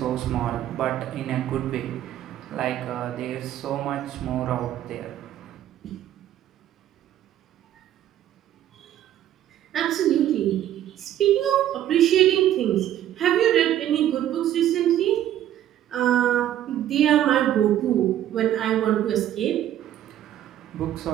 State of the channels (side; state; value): left; quieter; 11.9 dB